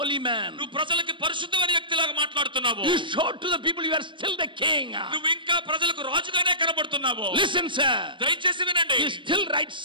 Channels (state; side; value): late; left; 0.24 ms